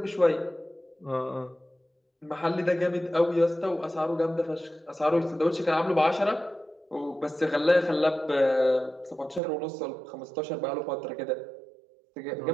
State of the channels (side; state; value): left; drops out; at 9.4 s